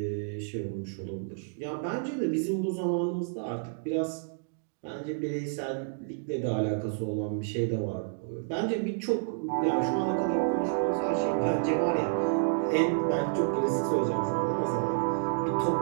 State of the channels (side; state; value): left; silent; digital silence